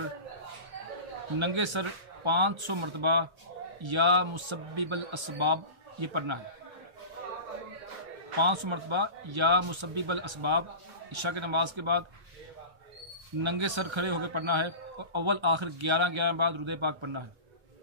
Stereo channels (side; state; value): left; late; 1.3 ms